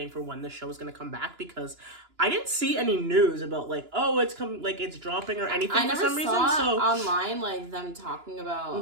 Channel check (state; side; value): late; left; 2.9 ms